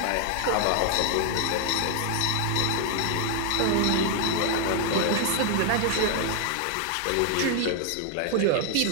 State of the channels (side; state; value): both; different; correlation 0.00